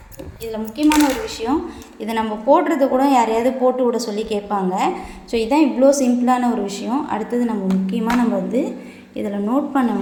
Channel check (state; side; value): identical; both; correlation 1.00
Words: இதில் முக்கியமான ஒரு விஷயம், இதை நம்ம போடுறது கூட யாரையாவது போட்டு விட சொல்லி கேட்பாங்க. ஸோ இதுதான் இவ்வளோ சிம்பிளான ஒரு விஷயம். அடுத்தது நம்ம வந்து இதில் நோட் பண்ண